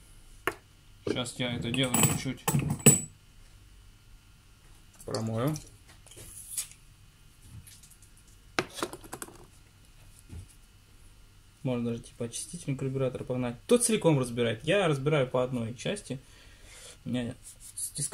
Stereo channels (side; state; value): both; identical; correlation 1.00